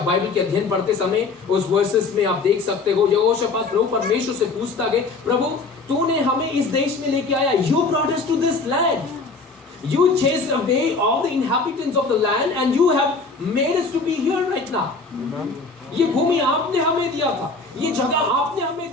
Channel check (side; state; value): right; quieter; 4.0 dB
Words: बाइबल के अध्ययन पढ़ते समय उस वर्सेस में आप देख सकते हो यहोशाफात प्रभु परमेश्वर से पूछता है, प्रभु तूने हमें इस देश में लेके आया. You brought us to this land. You chased away all the inhabitants of the land and you have made us to be here right now. ये भूमि आपने हमें दिया था, ये जगह आपने हमें